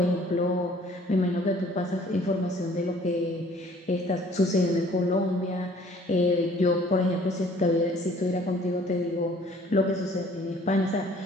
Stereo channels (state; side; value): normal; both; correlation 0.56